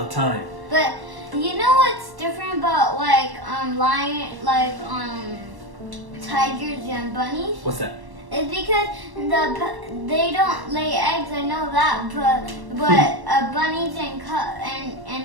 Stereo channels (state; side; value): late; left; 1.1 ms